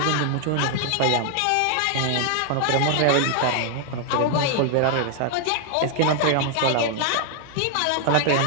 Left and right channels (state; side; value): different; both; correlation 0.00